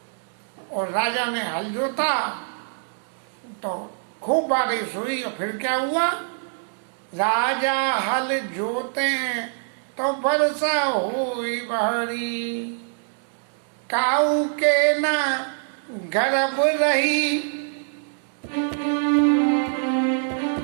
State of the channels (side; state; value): left; silent; digital silence